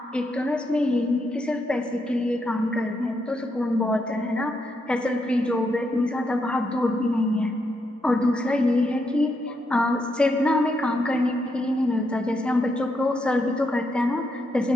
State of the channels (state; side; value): normal; both; correlation 0.80